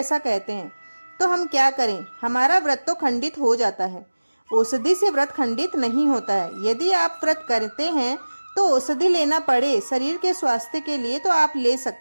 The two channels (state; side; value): inverted; both; correlation -1.00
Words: कहते हैं। तो हम क्या करें? हमारा व्रत तो खंडित हो जाता है। औषधि से व्रत खंडित नहीं होता है। यदि आप व्रत करते हैं तो औषधि लेना पड़े शरीर के स्वास्थ्य के लिए, तो आप ले